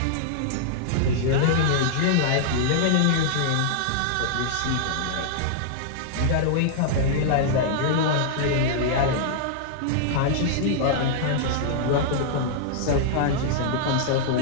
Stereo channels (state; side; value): different; both; correlation -0.01